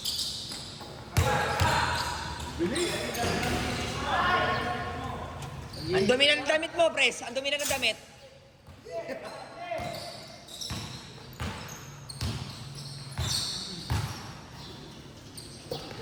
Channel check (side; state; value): both; identical; correlation 1.00